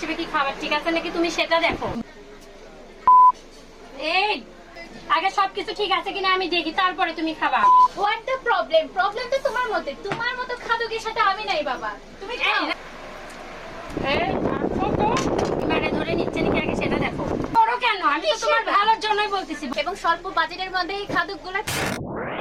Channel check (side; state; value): both; identical; correlation 1.00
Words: কি খাবার ঠিক আছে নাকি তুমি সেটা দেখো। এই আগে সবকিছু ঠিক আছে কিনা আমি দেখি, তারপরে তুমি খাবা। What the problem? প্রবলেম তো তোমার মধ্যে, তোমার মতো খাদকের সাথে আমি নাই বাবা। তুমি খাও। মানে ধরে নিচ্ছে নাকি আগে সেটা দেখো। করো কেন? আমি তো তোমার ভালোর জন্যই বলতেছি। এবং স্বল্প বাজেটের মধ্যে এই খাদকগুলো।